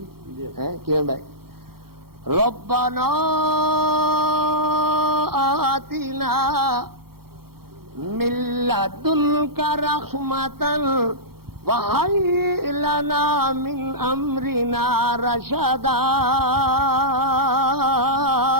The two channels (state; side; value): late; left; 0.94 ms